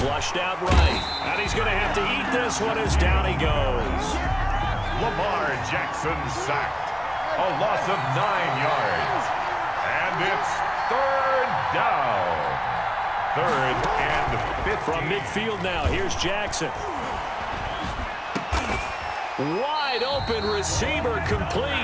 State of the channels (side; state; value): both; identical; correlation 1.00